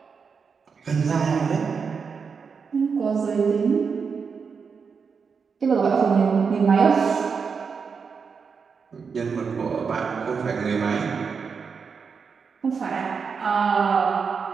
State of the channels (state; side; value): quieter; left; 5.7 dB